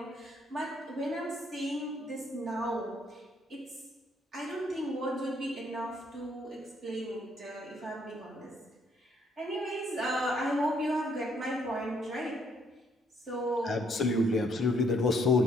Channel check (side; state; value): both; normal; correlation 0.69